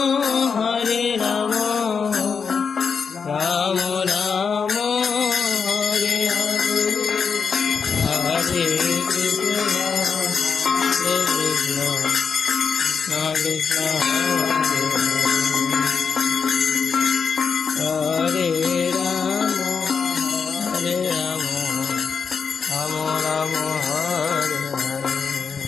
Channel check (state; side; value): quieter; right; 5.9 dB